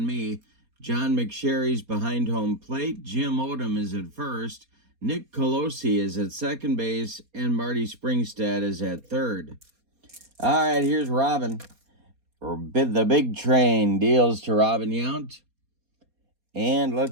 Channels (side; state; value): left; late; 4.2 ms